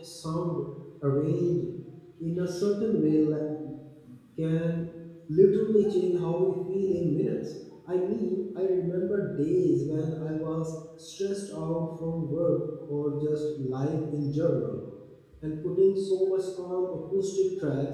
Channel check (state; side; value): identical; both; correlation 1.00